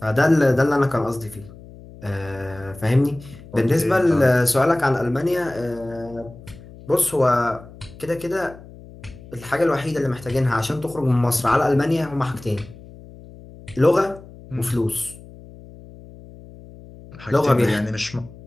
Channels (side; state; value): left; noise; hum, 19 dB below the sound